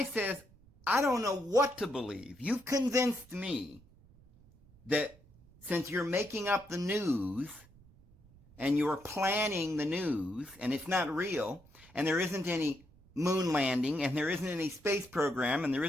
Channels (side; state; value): right; noise; rumble, 26 dB below the sound